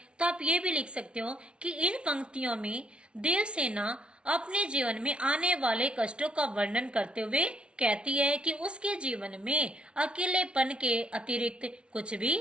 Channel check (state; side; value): late; left; 0.058 ms